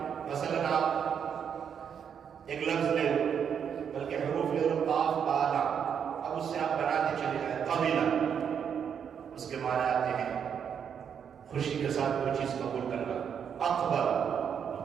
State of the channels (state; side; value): quieter; left; 7.7 dB